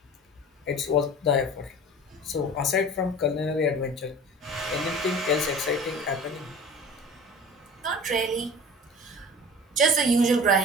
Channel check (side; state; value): both; normal; correlation 0.40